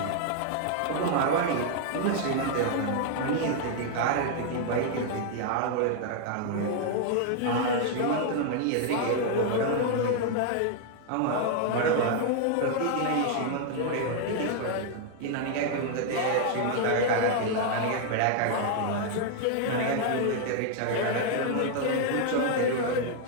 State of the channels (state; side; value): different; both; correlation 0.00